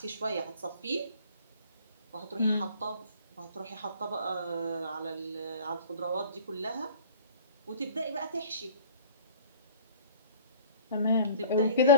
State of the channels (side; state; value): both; inverted; correlation -0.47